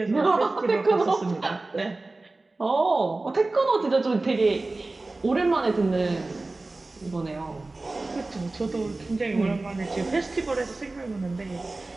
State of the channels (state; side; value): quieter; left; 3.2 dB